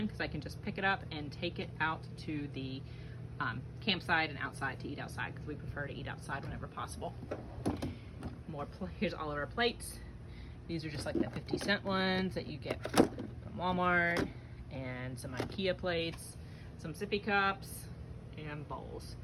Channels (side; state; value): both; identical; correlation 1.00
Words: because I can just pick it up and take it out to the campsite and outside to eat outside because we prefer to eat outside whenever possible. Here's all of our plates. These are just like the 50-cent ones that you get from Walmart, and some IKEA plates, some sippy cups, and bowls.